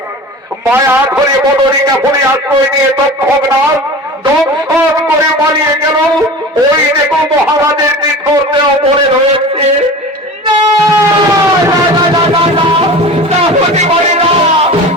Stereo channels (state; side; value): normal; both; correlation 0.35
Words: মায়া ধরে বদরিকা ফলে আশ্রয় নিয়ে তক্ষকনাগ দংশন করে পালিয়ে গেল। ওই দেখো মহারাজের নিথর দেহ পড়ে রয়েছে। হতে পারে না,